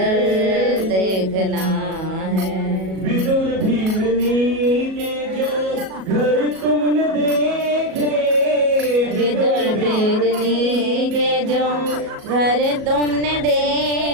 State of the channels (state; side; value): late; left; 37 ms